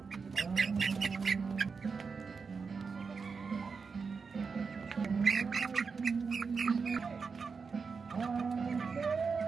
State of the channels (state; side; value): quieter; left; 5.1 dB